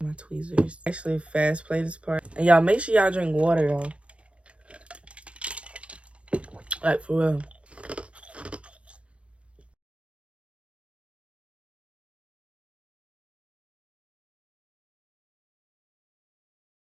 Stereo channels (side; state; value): left; late; 0.061 ms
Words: my tweezers. Actually fast play this part. And y'all, make sure y'all drink water though. Like for real.